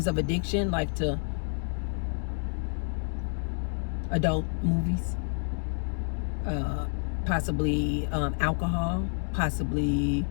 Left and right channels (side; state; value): right; silent; 57 dB below the other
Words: of addiction, like to adult movies, possibly alcohol, possibly